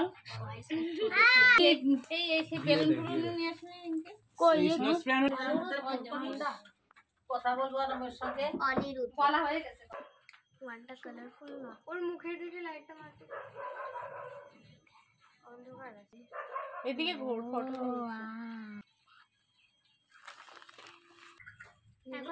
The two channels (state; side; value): identical; both; correlation 1.00